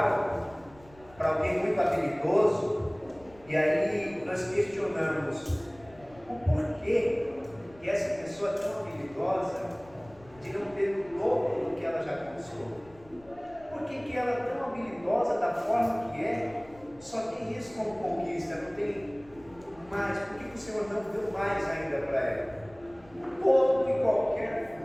para alguém muito habilidoso, e aí nós questionamos o porquê que essa pessoa é tão habilidosa de não ter o dobro do que ela já conquistou. Por que ela é tão habilidosa da forma que é, só tem isso como conquista, não tem mais? Por que o Senhor não deu mais ainda para ela? Todo e qualquer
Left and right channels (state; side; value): noise; left; rumble, 25 dB below the sound